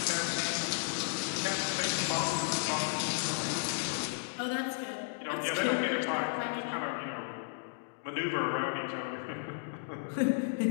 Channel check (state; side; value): silent; right; digital silence